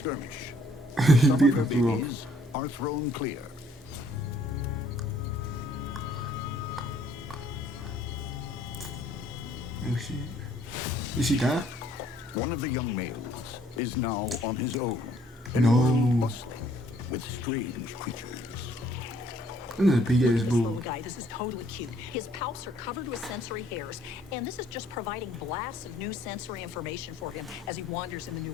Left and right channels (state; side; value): normal; both; correlation 0.63